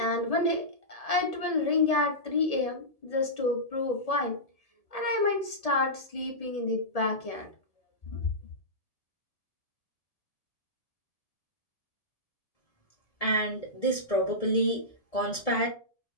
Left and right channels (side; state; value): right; late; 1.7 ms